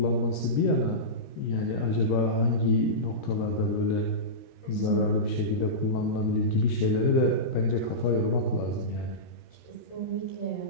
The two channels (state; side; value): late; right; 13 ms